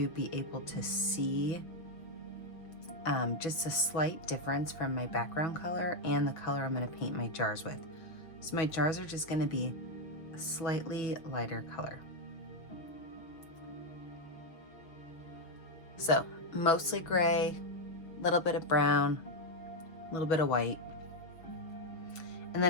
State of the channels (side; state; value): right; late; 6.1 ms